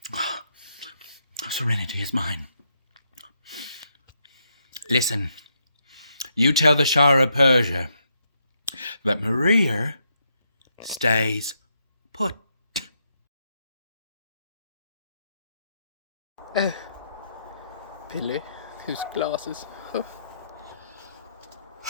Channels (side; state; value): both; inverted; correlation -0.78